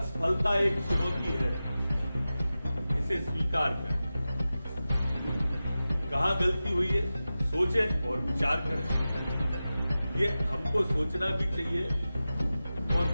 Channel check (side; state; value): both; inverted; correlation -0.95